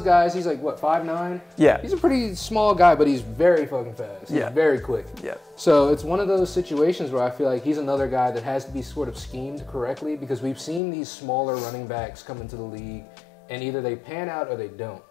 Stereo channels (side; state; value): right; drops out; at 10.8 s